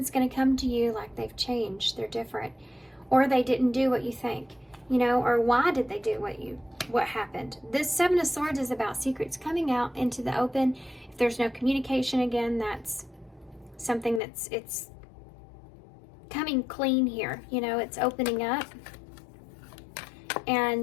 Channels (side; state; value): right; drops out; at 14.2 s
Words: going to come to you like they've changed. They're different. Or they didn't do what you think. Or why did they do what happened? This Seven of Swords is about secrets coming out into the open. If there's no communication, again, that's something it's coming clean here. It's opening up.